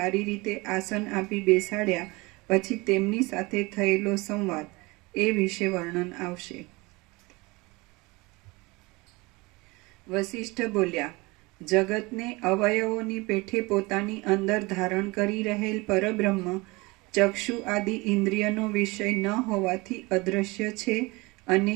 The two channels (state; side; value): quieter; left; 24.0 dB